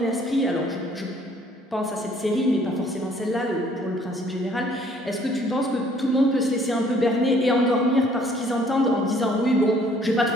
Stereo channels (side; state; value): both; normal; correlation 0.60